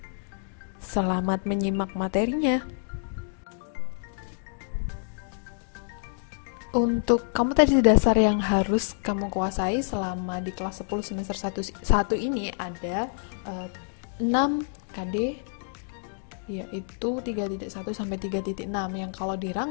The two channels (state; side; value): silent; right; digital silence